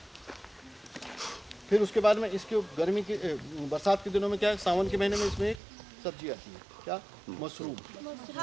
फिर उसके बाद में इसके गर्मी के बरसात के दिनों में क्या है, सावन के महीने में इसमें एक सब्जी आती है, क्या, मशरूम,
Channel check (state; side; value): drops out; left; at 5.6 s